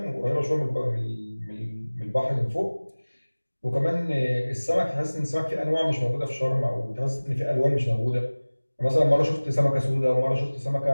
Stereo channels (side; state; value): both; inverted; correlation -1.00